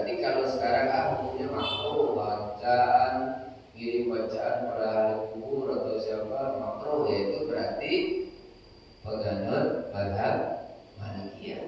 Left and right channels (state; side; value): identical; both; correlation 1.00